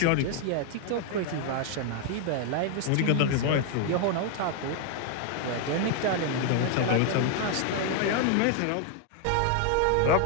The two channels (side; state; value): both; different; correlation 0.00